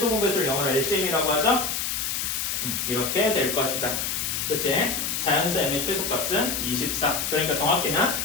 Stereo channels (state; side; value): noise; left; hiss, 1 dB below the sound